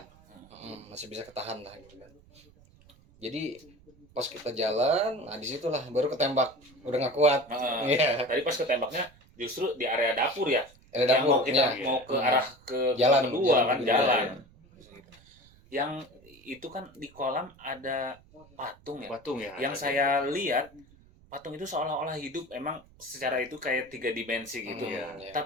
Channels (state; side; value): noise; right; rumble, 27 dB below the sound